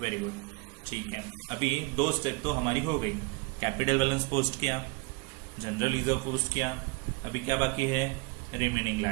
वेरी गुड, ठीक है। अभी 2 स्टेप तो हमारी हो गई, कैपिटल बैलेंस पोस्ट किया, जनरल रिजर्व पोस्ट किया। अभी क्या बाकी है, रिमेनिंग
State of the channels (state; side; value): quieter; left; 27.2 dB